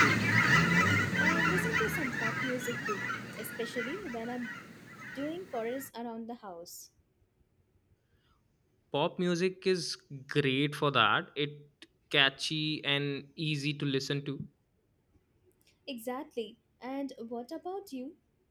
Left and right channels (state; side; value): identical; both; correlation 1.00